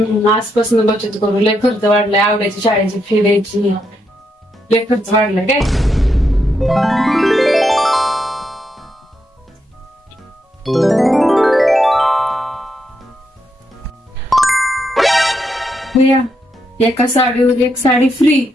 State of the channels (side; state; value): both; normal; correlation 0.81